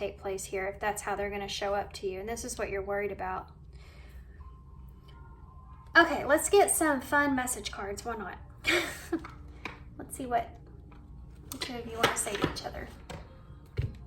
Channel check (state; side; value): identical; both; correlation 1.00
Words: place here if that's how they're going to show up to you. And this is what you're worried about. Okay, let's get some fun message cards. Why not? Let's see what the two of you want to say to each other.